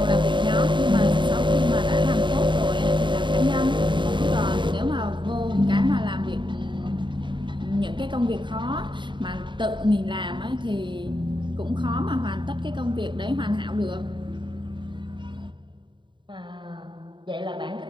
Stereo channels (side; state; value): left; late; 0.23 ms